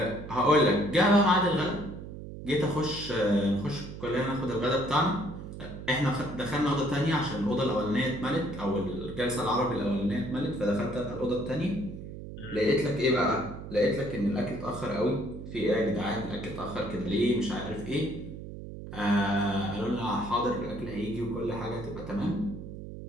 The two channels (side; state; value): right; noise; hum, 11 dB below the sound